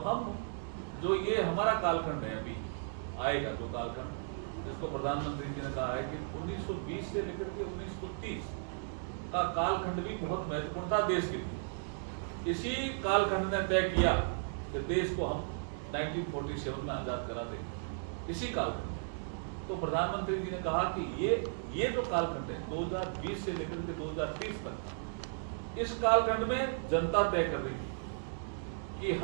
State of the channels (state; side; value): silent; left; 54 dB below the other